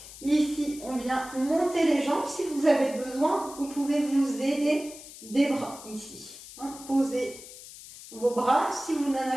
Ici, on vient monter les jambes. Si vous avez besoin, vous pouvez vous aider des bras ici. Hein, posez vos bras. Si vous n'en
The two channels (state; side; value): noise; left; hiss, 16 dB below the sound